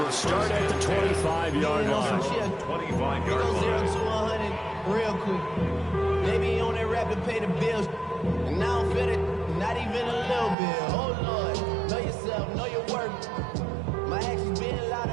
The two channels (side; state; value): left; drops out; at 10.6 s